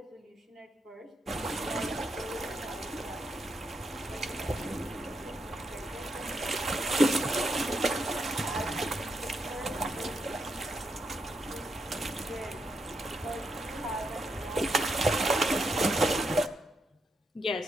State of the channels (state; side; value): normal; both; correlation 0.80